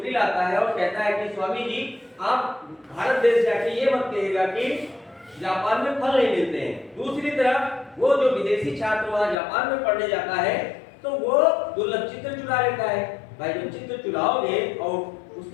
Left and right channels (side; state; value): right; drops out; at 9.3 s